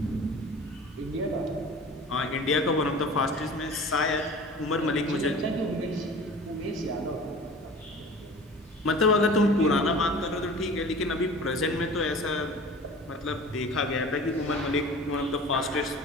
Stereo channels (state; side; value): normal; both; correlation 0.41